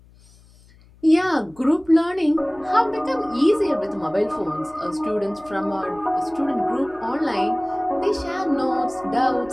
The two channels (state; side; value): noise; left; hum, 27 dB below the sound